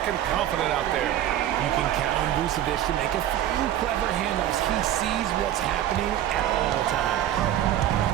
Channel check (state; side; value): quieter; left; 11.9 dB